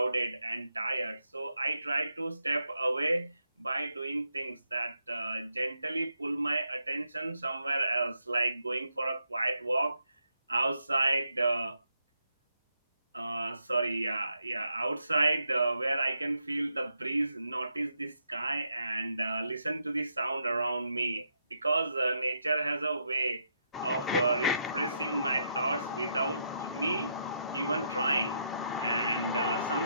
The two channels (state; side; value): inverted; both; correlation -0.79